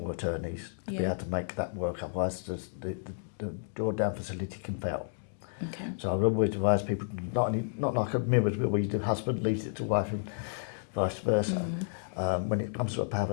attorneys to be able to make that work. Otherwise, the drawdown facility can fail. Okay. So I would always advise people not like a mirror's will where the husband leaves it to wife and vice versa. When it comes to a power of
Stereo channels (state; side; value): silent; right; digital silence